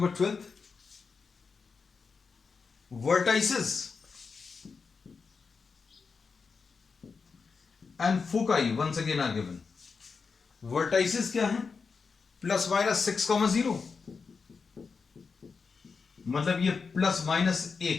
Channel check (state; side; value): quieter; right; 5.1 dB